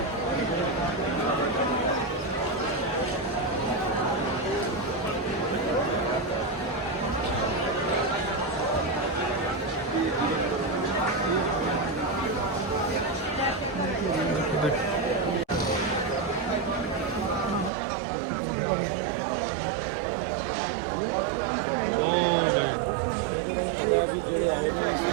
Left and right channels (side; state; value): left; drops out; at 17.7 s